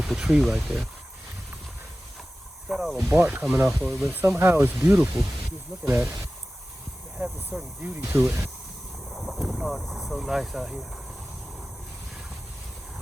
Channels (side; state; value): both; normal; correlation 0.96